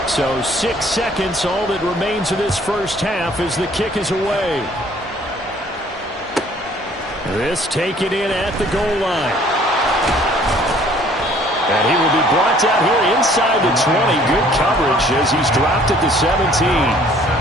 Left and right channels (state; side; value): normal; both; correlation 0.57